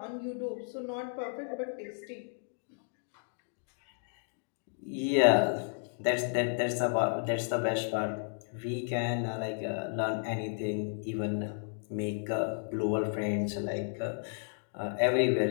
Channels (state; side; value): silent; right; digital silence